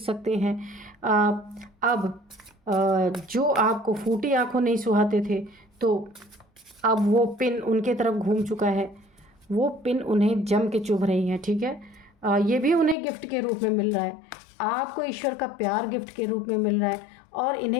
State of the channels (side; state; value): right; drops out; at 13.0 s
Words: हैं। अब जो आपको फूटी आँखों नहीं सुहाते थे, तो अब वो पिन उनके तरफ घूम चुका है, वो पिन उन्हें जम के चुभ रही है, ठीक है। ये भी उन्हें गिफ्ट के रूप में मिल रहा है, आपको ईश्वर का प्यार गिफ्ट के रूप में मिल रहा है, और